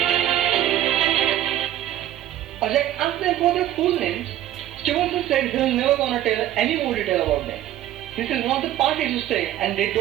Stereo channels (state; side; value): quieter; left; 12.7 dB